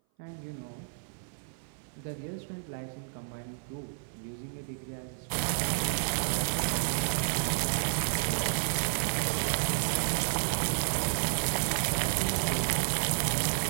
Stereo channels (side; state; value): left; silent; 57 dB below the other